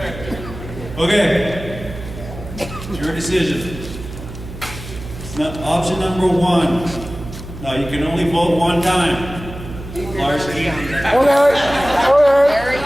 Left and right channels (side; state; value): right; noise; hum, 12 dB below the sound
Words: okay. It's your decision. Option number one. Now you can only vote one time. Larsky.